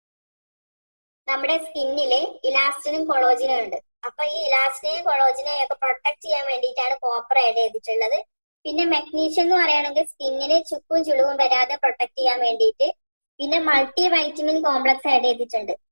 നമ്മുടെ സ്കിന്നില് ഇലാസ്റ്റിനും കൊളോജിനും ഉണ്ട്. അപ്പൊ ഈ ഇലാസ്റ്റിനെയും കൊളോജിനെയും ഒക്കെ പ്രൊട്ടക്ട് ചെയ്യാൻ വേണ്ടിയിട്ടാണ് കോപ്പർ ആഡ് ചെയ്തിട്ടുള്ളത്. പിന്നെ മെഗ്നീഷ്യം എന്ന് പറയുകയാണെങ്കിൽ സ്കിന്നിന് ചുക്കും ചുളിവും വരാതെ പ്രൊട്ടക്ട് ചെയ്യാൻ വേണ്ടിയിട്ട്. പിന്നെ മൾട്ടി വൈറ്റമിൻ കോംപ്ലക്സ് ആഡ് ചെയ്തിട്ടുണ്ട്.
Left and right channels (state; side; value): inverted; both; correlation -1.00